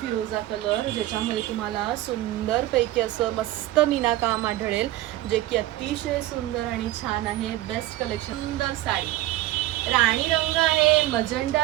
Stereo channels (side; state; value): left; quieter; 15.8 dB